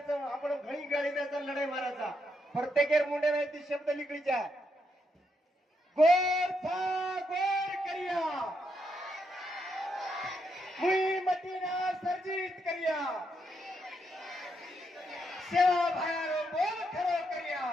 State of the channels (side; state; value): both; normal; correlation 0.79